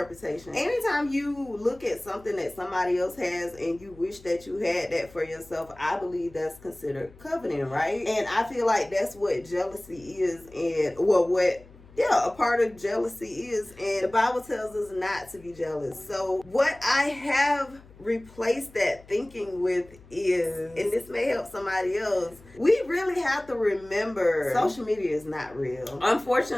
anytime you look at something that somebody else has and you wish that you had that for yourself, I believe that's considered coveting, right? And I feel like that's what jealousy is, and a part of jealousy is, and the Bible tells us not to be jealous. So what I have replaced that thinking with is, and this may help somebody else, we really have to remember social media is not real.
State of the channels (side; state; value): left; noise; hum, 23 dB below the sound